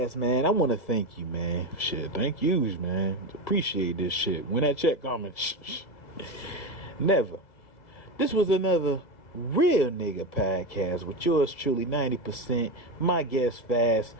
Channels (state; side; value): late; right; 1.6 ms